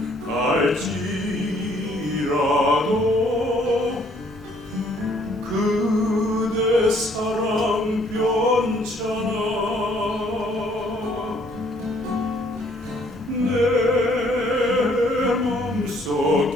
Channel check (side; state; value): both; normal; correlation 0.63